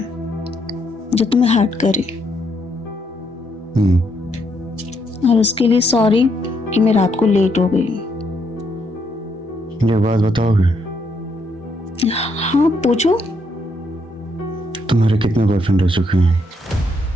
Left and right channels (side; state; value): both; normal; correlation 0.75